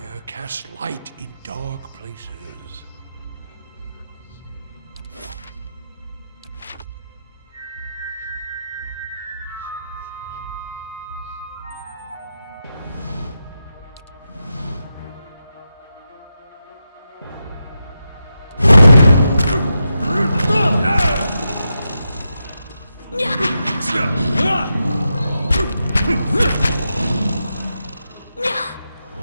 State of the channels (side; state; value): both; inverted; correlation -0.88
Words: casts light in dark places.